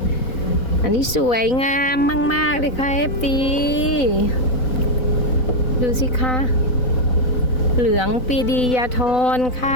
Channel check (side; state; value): right; late; 3.9 ms